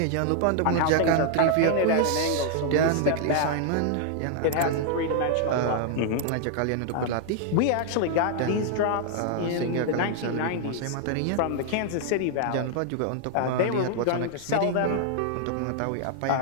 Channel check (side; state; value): both; different; correlation 0.00